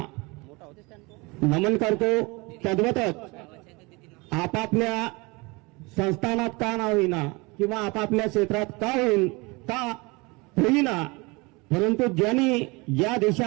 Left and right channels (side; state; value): left; quieter; 26.0 dB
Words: नमन करतो. तद्वतच आपापल्या संस्थानात का ना होईना किंवा आपापल्या क्षेत्रात का होईना, परंतु ज्यांनी या